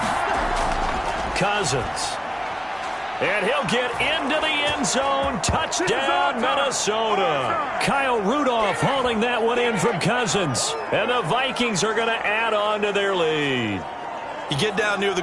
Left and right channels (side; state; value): both; identical; correlation 1.00